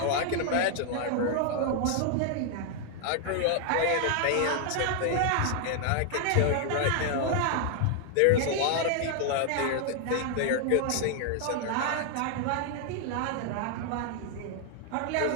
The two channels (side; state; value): both; different; correlation 0.00